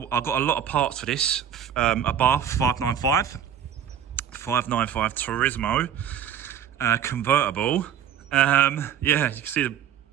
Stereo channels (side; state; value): left; quieter; 9.2 dB